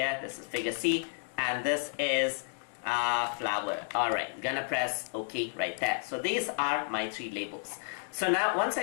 This is figure C. And this is flower. Alright, gonna press OK right there. So these are my three labels. So now once I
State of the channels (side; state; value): right; silent; 57 dB below the other